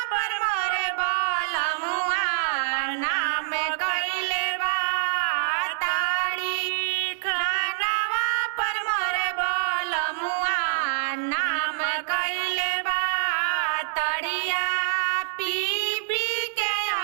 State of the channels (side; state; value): left; silent; digital silence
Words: पर मोरे बलमुआ नाम कइले बा। ताड़ी खानावा पर मोरे बलमुआ नाम कइले बा। तड़िया पी पी के